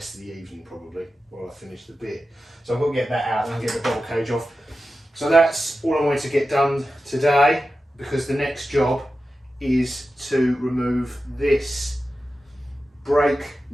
of the evening probably, while I finish the bit. So I've got to get that out and I'll get the bottle cage off. So that's all I wanted to get done today, because the next job is to remove this brake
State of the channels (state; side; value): normal; both; correlation 0.92